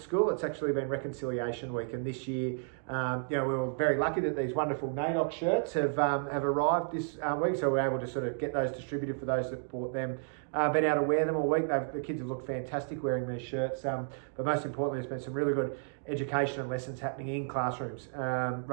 It's actually been Reconciliation Week, and this year, we were very lucky that these wonderful NAIDOC shirts have arrived this week, so we're able to sort of get those distributed for those that bought them. Been able to wear them all week. The kids have looked fantastic wearing these shirts, but most importantly, there's been some really good education and lessons happening in classrooms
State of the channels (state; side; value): silent; left; digital silence